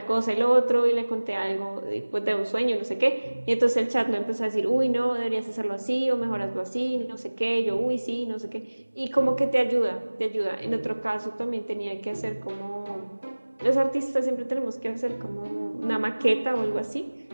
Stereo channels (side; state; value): both; inverted; correlation -1.00